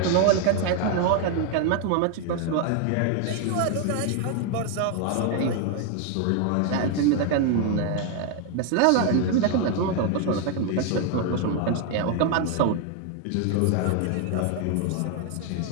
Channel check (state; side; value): different; both; correlation 0.01